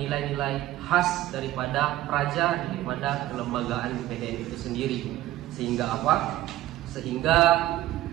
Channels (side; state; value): left; quieter; 15.1 dB